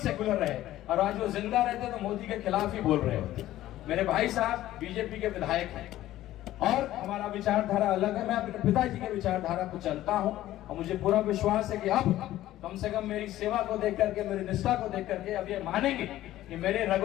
रहे, और आज वो जिंदा रहते तो मोदी के खिलाफ ही बोल रहे होते। मेरे भाई साहब बीजेपी के विधायक हैं और हमारा विचारधारा अलग है। मैं अपने पिताजी के विचारधारा को चलता हूं और मुझे पूरा विश्वास है कि अब कम से कम मेरी सेवा को देख करके, मेरी निष्ठा को देख करके अब ये मानेंगे कि मेरे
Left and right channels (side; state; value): right; quieter; 14.4 dB